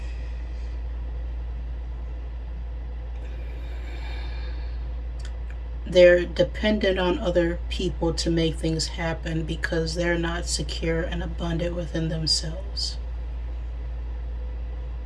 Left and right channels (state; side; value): identical; both; correlation 1.00